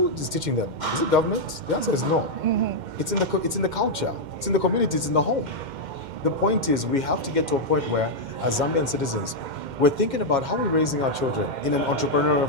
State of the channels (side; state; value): left; late; 2.1 ms